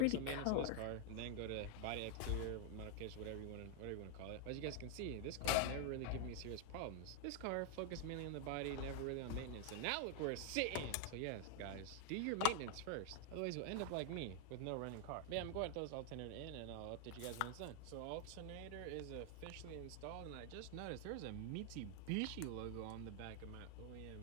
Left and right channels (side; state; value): both; different; correlation 0.00